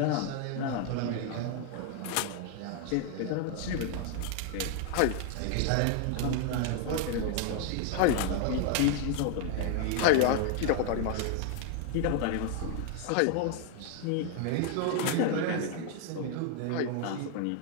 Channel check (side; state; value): both; different; correlation 0.00